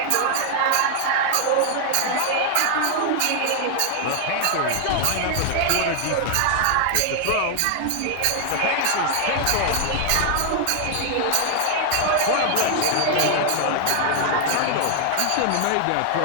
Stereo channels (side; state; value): both; different; correlation 0.00